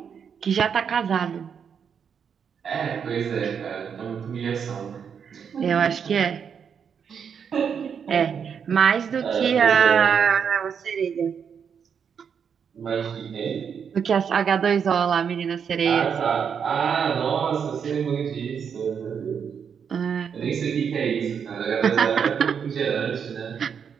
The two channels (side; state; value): left; quieter; 7.1 dB